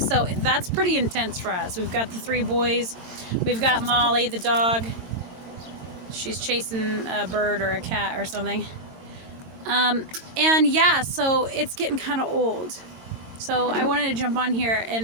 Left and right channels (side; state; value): left; late; 22 ms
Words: that's pretty intense for us. We've got the 3 boys. We've got Molly, the dog. She's chasing a bird or a cat or something. And yeah, so it's getting kind of old. So I wanted to jump on here